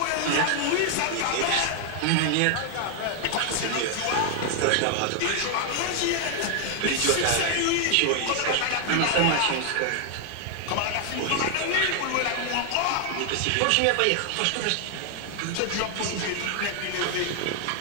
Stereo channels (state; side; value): different; both; correlation 0.00